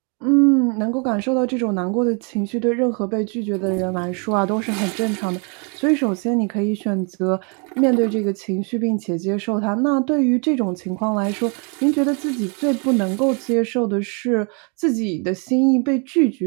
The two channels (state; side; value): quieter; left; 36.0 dB